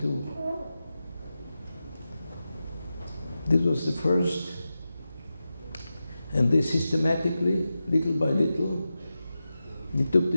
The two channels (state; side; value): inverted; both; correlation -0.92